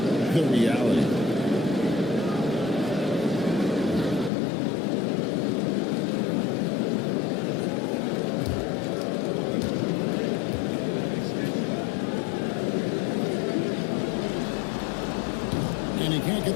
the reality. And he can't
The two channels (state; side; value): drops out; right; at 4.3 s